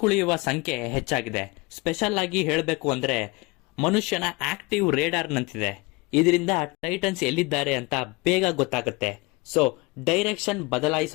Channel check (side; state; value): right; quieter; 24.9 dB